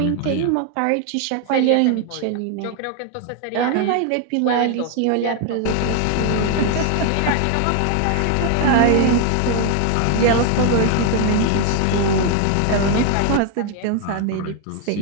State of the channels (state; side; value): different; both; correlation 0.01